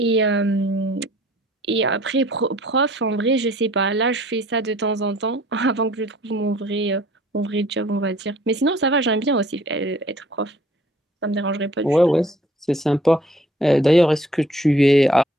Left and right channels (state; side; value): normal; both; correlation 0.56